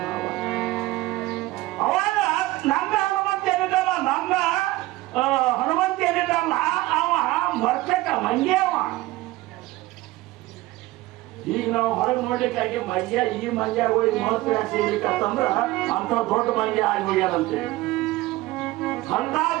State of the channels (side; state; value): left; quieter; 18.4 dB